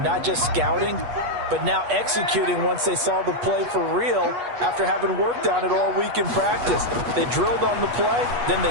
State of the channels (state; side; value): late; left; 8.3 ms